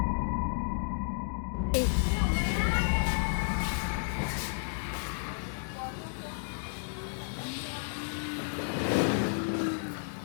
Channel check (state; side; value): silent; right; digital silence